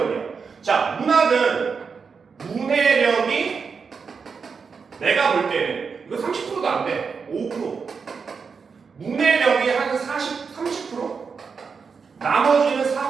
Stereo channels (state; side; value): quieter; left; 5.5 dB